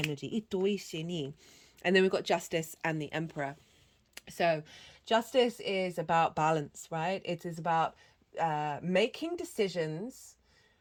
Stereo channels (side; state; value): both; identical; correlation 1.00